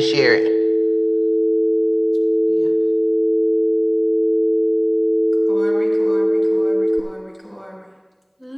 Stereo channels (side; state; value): both; identical; correlation 1.00